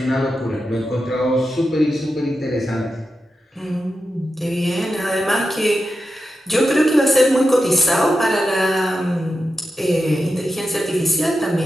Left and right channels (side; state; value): both; normal; correlation 0.89